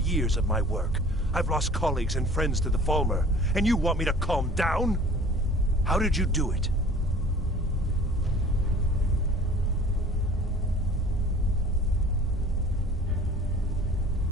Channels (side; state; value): both; normal; correlation 0.47